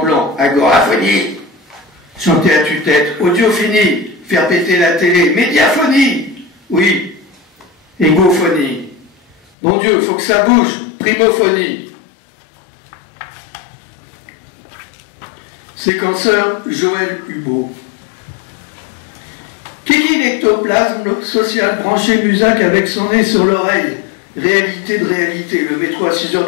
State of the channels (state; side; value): drops out; right; at 9.3 s